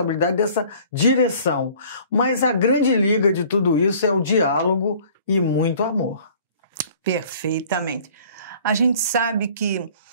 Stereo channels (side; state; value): both; inverted; correlation -0.51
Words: dessa direção. Mas a grande liga de tudo isso é o diálogo e muito amor. Perfeitamente. A gente sabe que